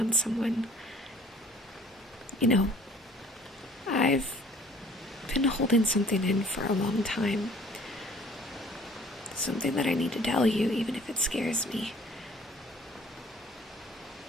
someone. You know, I've been holding something in for a long time. Something that I need to tell you, even if it scares me.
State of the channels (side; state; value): both; normal; correlation 0.53